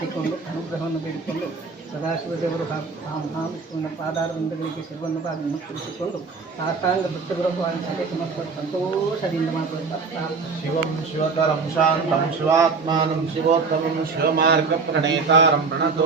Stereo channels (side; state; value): left; quieter; 4.7 dB